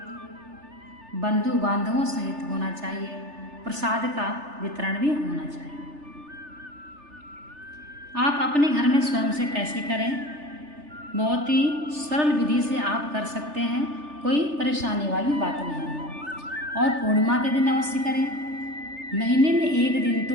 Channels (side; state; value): left; late; 3.3 ms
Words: बंधु बांधवों सहित होना चाहिए। प्रसाद का वितरण भी होना चाहिए। आप अपने घर में स्वयं से कैसे करें? बहुत ही सरल विधि से आप कर सकते हैं, कोई परेशानी वाली बात नहीं है। और पूर्णिमा के दिन अवश्य करें। महीने में एक दिन तो